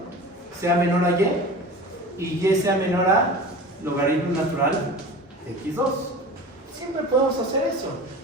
sea menor a y y sea menor a logaritmo natural de x2. Siempre podemos hacer eso.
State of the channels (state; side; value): normal; both; correlation 0.35